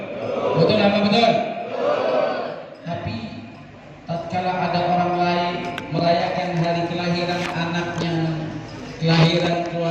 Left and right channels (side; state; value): both; identical; correlation 1.00